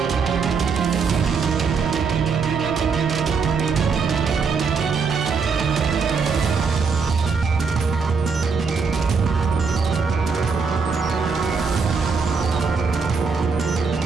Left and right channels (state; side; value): quieter; left; 5.2 dB